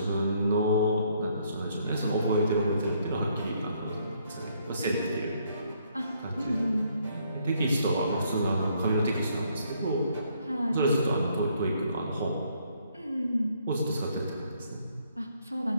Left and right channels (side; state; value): both; inverted; correlation -0.69